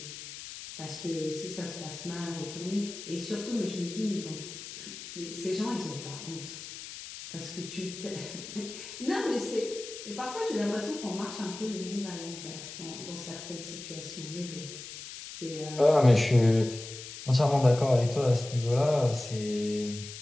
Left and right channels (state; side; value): noise; left; hiss, 11 dB below the sound